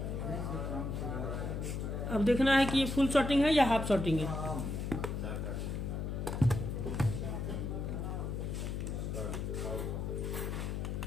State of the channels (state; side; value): noise; left; hum, 3 dB below the sound